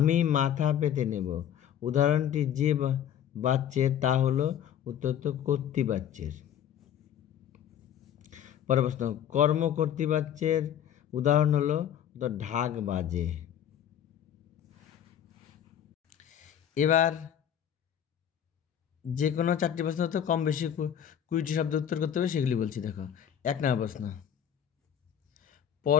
মাথা পেতে নেব, উদাহরণটি যে বাচ্চের তা হলো, উত্তর তো কর্তৃবাচ্যের। পরের প্রশ্ন, কর্ম কর্তৃবাচ্যের উদাহরণ হলো তো ঢাক বাজে। এবার যে কোনো 4টি প্রশ্ন তো কম বেশি 20টি শব্দ উত্তর করতে হবে, সেগুলি বলছি। দেখো, 1 নম্বর প্রশ্ন,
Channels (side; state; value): right; quieter; 9.6 dB